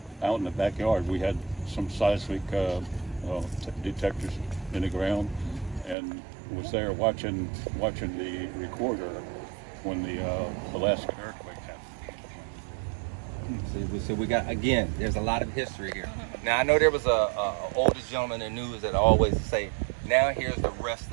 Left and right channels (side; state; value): left; drops out; at 6.0 s